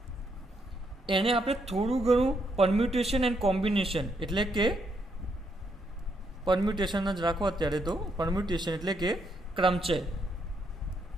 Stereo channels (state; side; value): normal; both; correlation 0.76